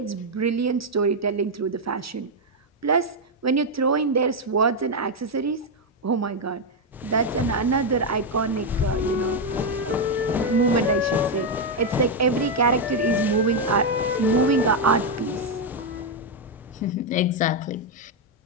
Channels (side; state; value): both; normal; correlation 0.02